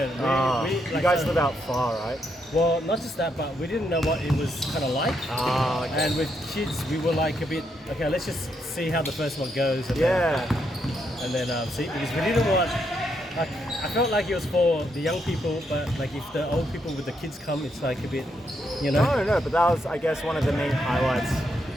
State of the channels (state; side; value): normal; both; correlation 0.78